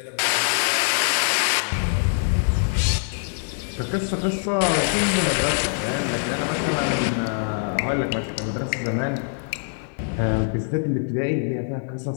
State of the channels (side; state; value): right; silent; 57 dB below the other